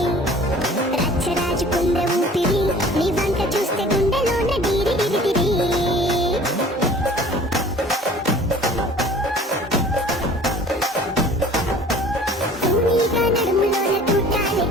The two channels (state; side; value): normal; both; correlation 0.47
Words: రచ్చరాజు కుంద ఊపిరి నీ వంక చూస్తే గుండెలోన డీరి డిరిటిరి నడుములోన